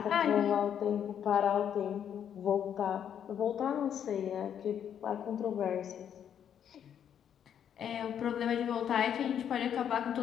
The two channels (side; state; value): right; quieter; 9.0 dB